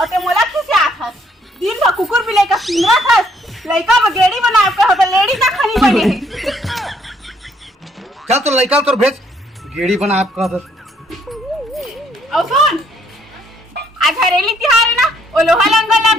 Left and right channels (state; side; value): normal; both; correlation 0.67